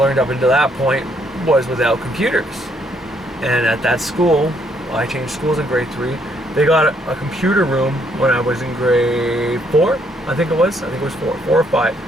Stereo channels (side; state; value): both; normal; correlation 0.70